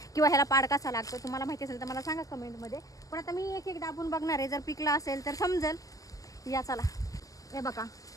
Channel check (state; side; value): late; right; 0.17 ms